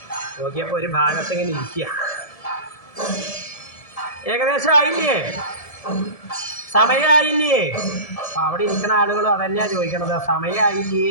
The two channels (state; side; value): late; right; 1.7 ms